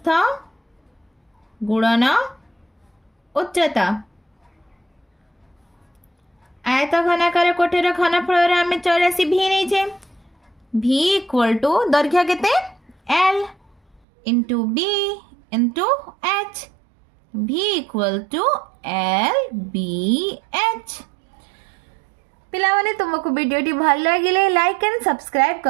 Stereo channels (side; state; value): left; drops out; at 14.0 s